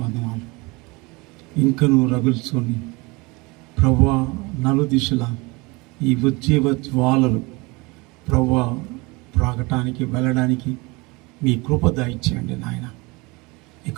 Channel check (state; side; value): quieter; left; 25.5 dB